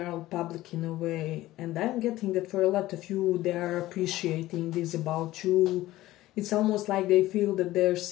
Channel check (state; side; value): quieter; right; 16.3 dB